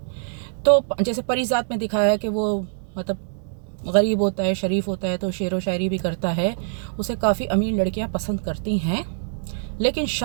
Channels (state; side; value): silent; left; digital silence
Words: तो जैसे परिजात में दिखाया कि वो मतलब गरीब होता है, शरीफ होता है, तो शेरो शायरी भी करता है, उसे काफ़ी अमीर लड़कियां पसंद करती हैं। लेकिन